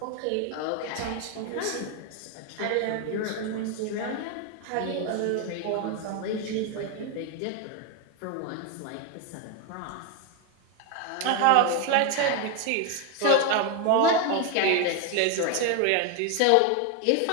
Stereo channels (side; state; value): both; different; correlation 0.01